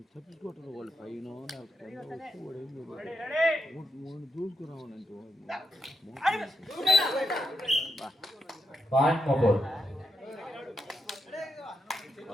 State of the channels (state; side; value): normal; both; correlation 0.84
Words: వాళ్ళు పైన మూడు పాయింట్ మోపూర్.